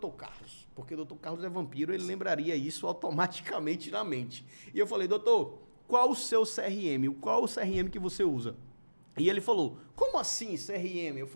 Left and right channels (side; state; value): both; inverted; correlation -1.00